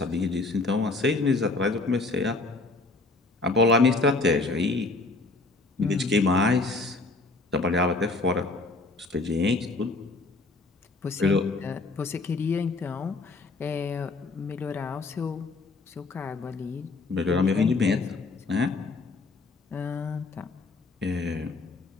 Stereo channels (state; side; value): quieter; right; 3.5 dB